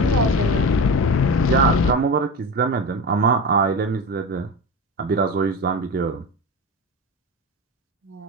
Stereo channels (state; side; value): normal; both; correlation 0.25